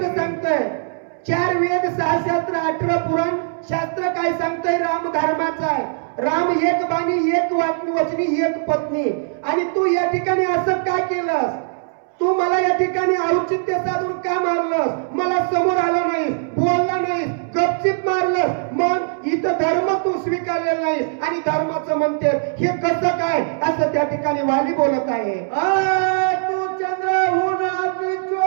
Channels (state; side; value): silent; left; 65 dB below the other